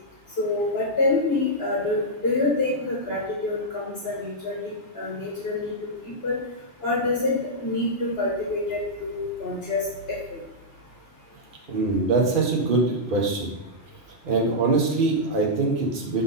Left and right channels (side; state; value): both; normal; correlation -0.08